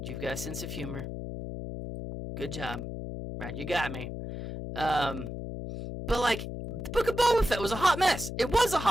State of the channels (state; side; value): noise; left; hum, 7 dB below the sound